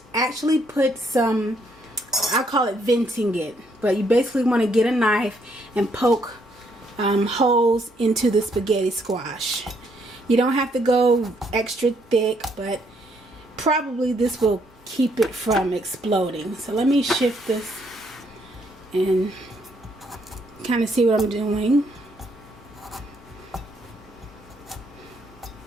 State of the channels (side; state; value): both; normal; correlation 0.71